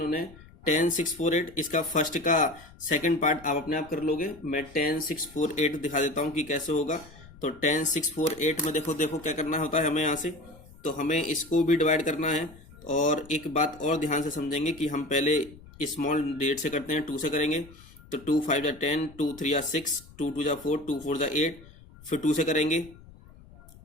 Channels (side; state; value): left; noise; rumble, 22 dB below the sound